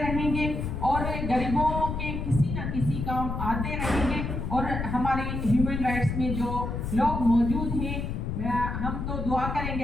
رہیں گے اور غریبوں کے کسی نہ کسی کام آتے رہیں گے. اور ہمارے ہیومن رائٹس میں جو لوگ موجود ہیں ہم تو دعا کریں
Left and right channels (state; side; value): noise; left; rumble, 3 dB below the sound